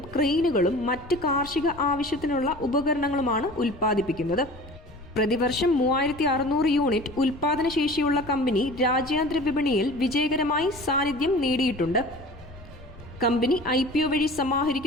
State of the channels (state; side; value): noise; left; rumble, 19 dB below the sound